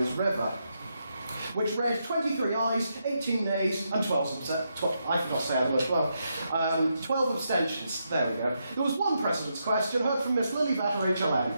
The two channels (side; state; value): both; inverted; correlation -0.82